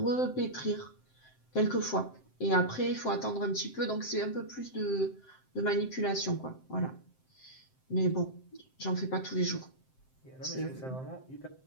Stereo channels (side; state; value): right; late; 7.7 ms